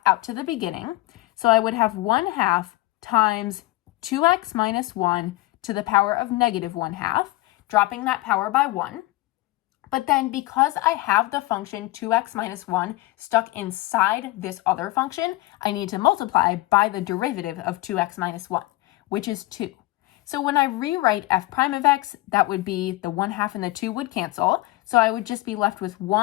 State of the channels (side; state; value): right; quieter; 19.8 dB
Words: out to the beginning. So I would have 1/2 times 2x minus 1 to the power of negative 1/2, dropping that power by 1. But then because I have the function 2x minus 1 stuck inside this other function, I need to multiply by the derivative of 2x minus 1, which is 2. So when I rewrite f prime of x, that would be the 1/2 and the 2 would cancel. So I would just be left with